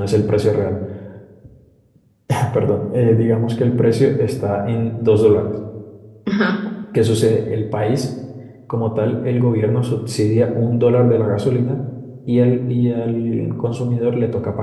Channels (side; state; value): both; identical; correlation 1.00